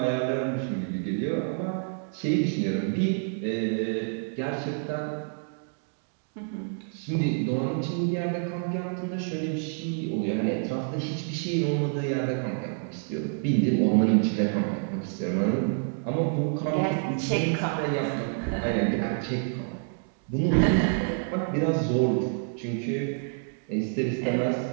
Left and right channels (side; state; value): left; silent; 59 dB below the other